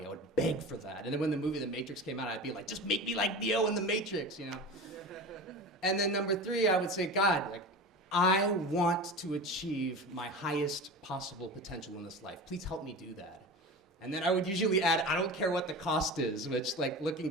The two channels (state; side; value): normal; both; correlation 0.31